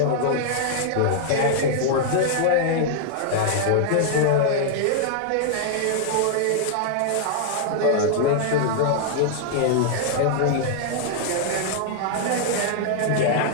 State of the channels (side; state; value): both; different; correlation -0.01